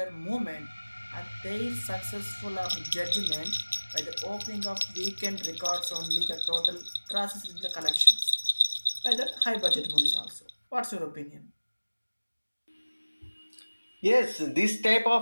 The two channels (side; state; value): both; inverted; correlation -1.00